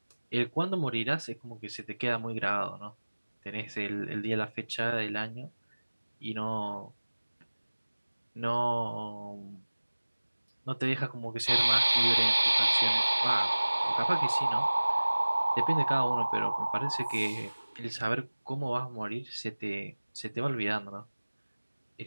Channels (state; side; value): inverted; both; correlation -1.00